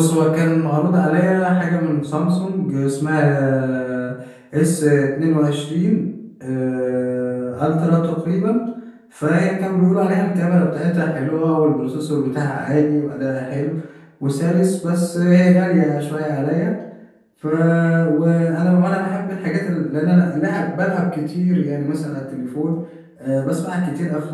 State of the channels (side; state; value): both; identical; correlation 1.00